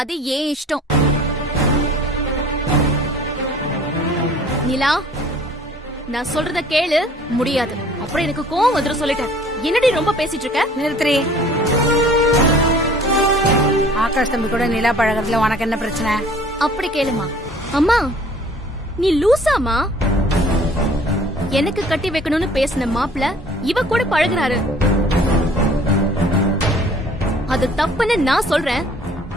ஏன் இஷ்டம். நிலா, நான் சொல்றத கேளு. முடியாது. அப்புறம் எனக்கு கோவம் வந்துரும் சொல்லிட்டேன். என்னடி ரொம்ப பேசிட்டு இருக்க? நிறுத்துறி. ஆகாஷ் தம்பி கூட நிலா பழகிறதுல உனக்கு என்ன பிரச்சனை? அப்படி கேளுமா. அம்மா, நீ லூசாமா? எனக்கு கட்டி வைக்கணும்னு பேசின மாப்பிள்ள இவ கூட பழகுறாரு. அது தப்புன்னு நான் சொல்றேன்.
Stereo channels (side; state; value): both; normal; correlation 0.52